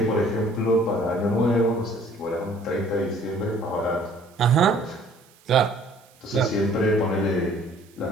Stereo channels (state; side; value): noise; right; hiss, 29 dB below the sound